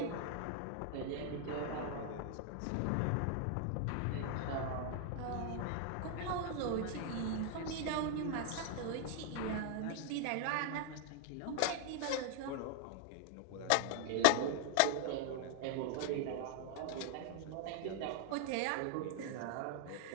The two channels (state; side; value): different; both; correlation 0.00